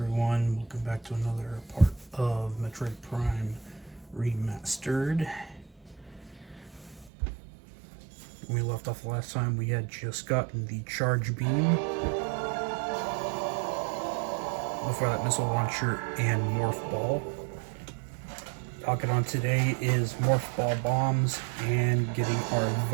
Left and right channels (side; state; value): left; drops out; at 7.1 s